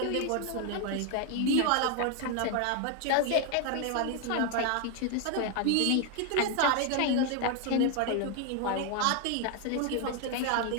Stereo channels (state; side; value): different; both; correlation 0.01